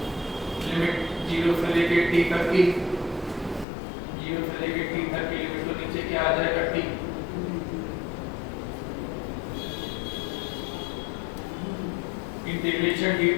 limit 0 से लेके t तक की, 0 से लेके t तक की लिमिट तो नीचे क्या आ जाएगा? t। इंटीग्रेशन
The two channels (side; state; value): right; drops out; at 3.7 s